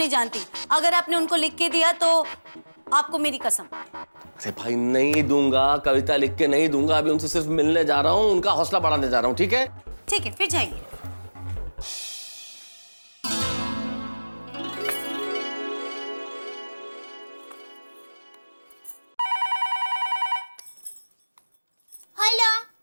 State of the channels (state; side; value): inverted; both; correlation -1.00